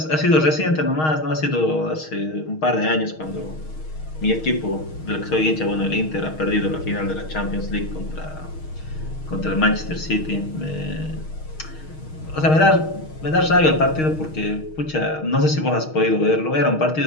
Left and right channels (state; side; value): late; right; 6.4 ms